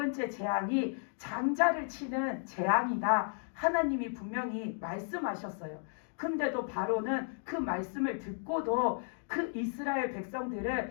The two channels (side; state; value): right; silent; 55 dB below the other